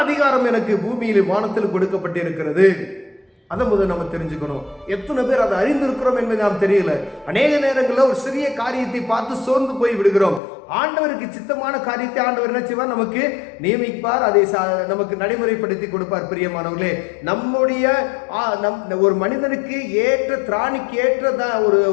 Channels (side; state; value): right; drops out; at 10.4 s